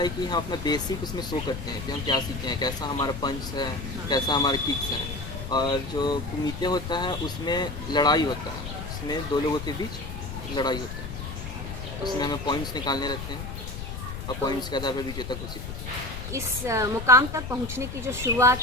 कि हम अपना बेसिक उसमें शो करते हैं कि हम क्या सीखे हैं, कैसा हमारा पंच है, कैसा हमारा किक्स है। और जो कुमिते होता है उसमें लड़ाई होता है, उसमें दो लोगों के बीच लड़ाई होता है। उसमें हमें पॉइंट्स निकालने रहते हैं और पॉइंट्स के आधार पर विजेता घोषित होता है। इस मुकाम तक पहुंचने की जो शुरुआत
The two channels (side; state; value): left; noise; rumble, 8 dB below the sound